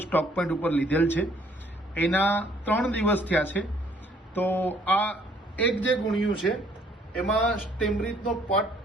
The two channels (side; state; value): both; normal; correlation 0.62